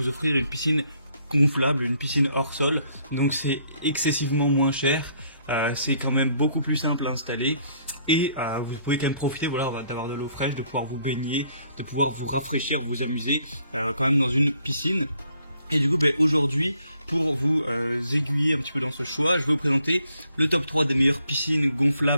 offrir une piscine gonflable, une piscine hors sol. Donc c'est excessivement moins cher, c'est quand même beaucoup plus simple à installer. Et vous pouvez quand même profiter d'avoir de l'eau fraîche, de pouvoir vous baigner, de pouvoir vous rafraîchir, vous amuser quand même dans une piscine. Et du coup aujourd'hui, pour vous aiguiller un petit peu dans ce choix, je vais vous présenter le top 3 des meilleures piscines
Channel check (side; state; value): both; inverted; correlation -0.67